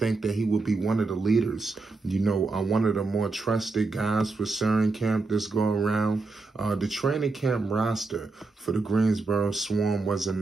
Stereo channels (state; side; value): quieter; left; 3.7 dB